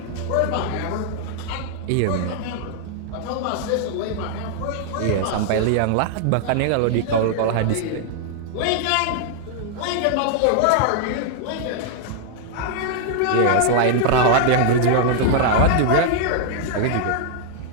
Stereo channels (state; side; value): different; both; correlation 0.00